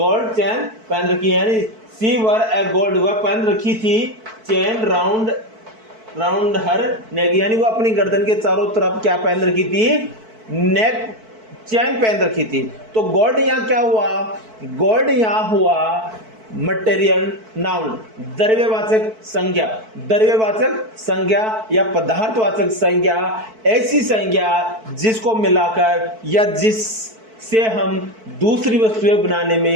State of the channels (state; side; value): late; left; 4.5 ms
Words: चेन पहन रखी है। यानी शी वोर ए गोल्ड, वह पहन रखी थी चेन राउंड हर नेक, यानी वो अपनी गर्दन के चारों तरफ क्या पहन रखी थी? नेक चैन पहन रखी थी। तो गोल्ड यहाँ क्या हुआ? गोल्ड यहाँ हुआ मटेरियल नाउन, द्रव्यवाचक संज्ञा या पदार्थवाचक संज्ञा, ऐसी संज्ञा जिसको मिलाकर या जिससे हम दूसरी वस्तुएं बनाने